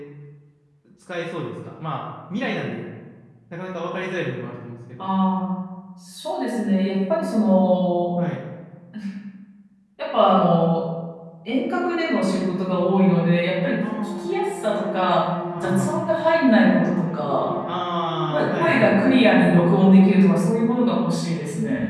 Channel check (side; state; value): both; identical; correlation 1.00